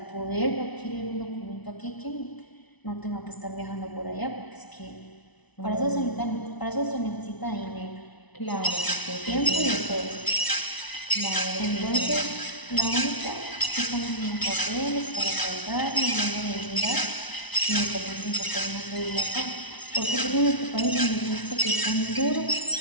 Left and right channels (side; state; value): right; late; 1.0 ms